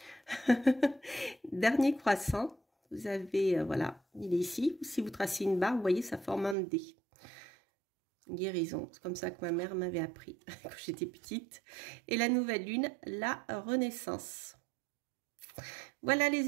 Dernier croissant, vous avez, voilà, il est ici. Si vous tracez une barre, vous voyez, ça forme un D. Guérison, c'est comme ça que ma mère m'avait appris quand j'étais petite. Et la nouvelle lune, la renaissance. Voilà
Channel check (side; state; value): left; drops out; at 6.6 s